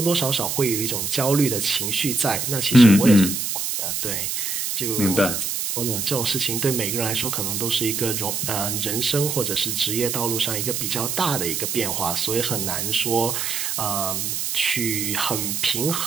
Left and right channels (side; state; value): right; noise; hiss, 2 dB below the sound